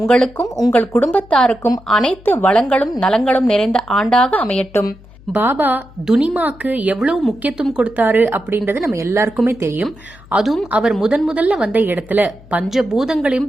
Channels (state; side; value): noise; left; hum, 23 dB below the sound